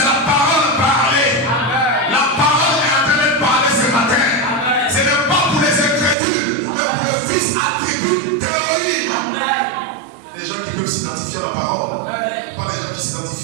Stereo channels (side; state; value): left; drops out; at 6.2 s